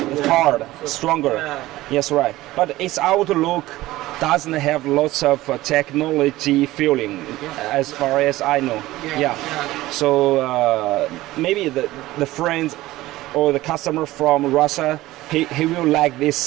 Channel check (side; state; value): left; quieter; 17.2 dB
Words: It's hard, stronger. Yeah. Yes, right. But its outlook doesn't have lots of technology feeling, as far as I know. Yeah. So maybe the friend or the customer from Russia, he will like